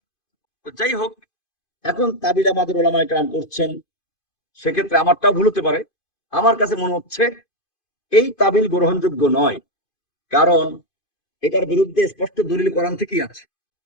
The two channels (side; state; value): right; late; 2.5 ms